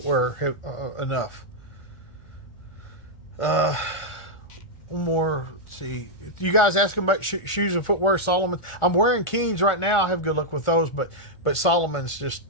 enough. One more. Let's see. You guys asking about shoes and footwear, Solomon? I'm wearing Keens right now. I have good luck with those, but Solomon's just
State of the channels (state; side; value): late; right; 1.4 ms